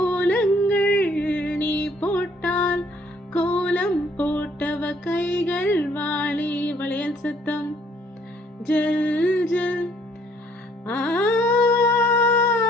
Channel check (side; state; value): both; normal; correlation 0.63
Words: நீ போட்டால், கோலம் போட்டவ கைகள் வாடி. வளையல் சத்தம் ஜல் ஜல். ஆ